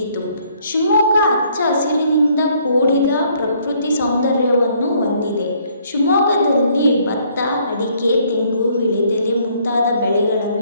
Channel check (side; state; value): both; inverted; correlation -0.65